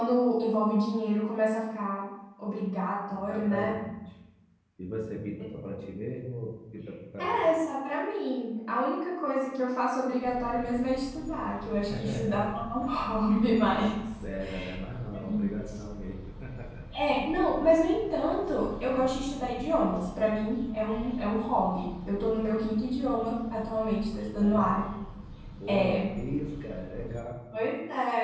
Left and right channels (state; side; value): identical; both; correlation 1.00